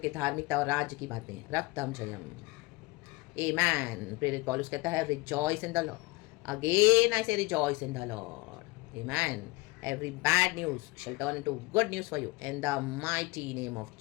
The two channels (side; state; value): right; quieter; 23.4 dB